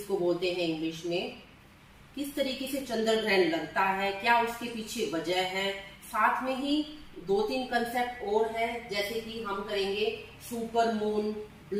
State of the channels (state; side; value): identical; both; correlation 1.00